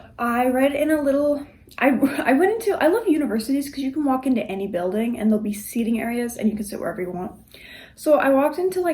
I read in a little, I love universities because you can walk into any building and there'll be seating areas and you can sit wherever you want. So, I walked into,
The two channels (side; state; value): both; identical; correlation 1.00